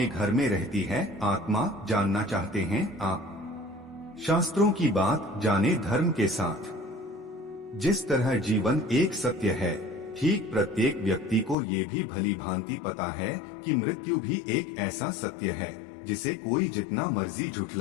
घर में रहती है आत्मा, जानना चाहते हैं आप? शास्त्रों की बात जाने धर्म के साथ। जिस तरह जीवन एक सत्य है, ठीक प्रत्येक व्यक्ति को ये भी भली भांति पता है कि मृत्यु भी एक ऐसा सत्य है जिसे कोई जितना मर्जी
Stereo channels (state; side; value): drops out; right; at 11.6 s